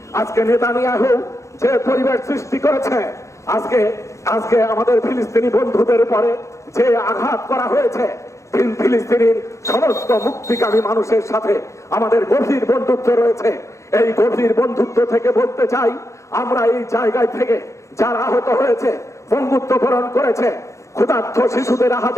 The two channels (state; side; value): late; right; 0.14 ms